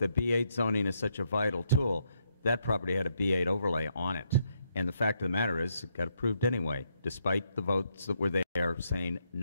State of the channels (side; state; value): both; inverted; correlation -0.76